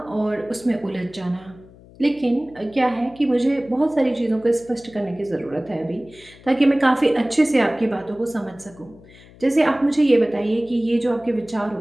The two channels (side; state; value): left; noise; hum, 23 dB below the sound